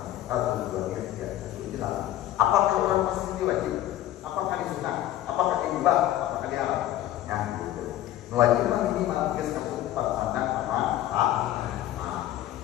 Tujuannya tidak jelas. Apakah orang pasti wajib? Apakah disunah? Apakah dibah? Apakah diharam? Ya, gitu. Wajib minimal geus kesukupan pandang sama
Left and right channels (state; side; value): quieter; right; 13.5 dB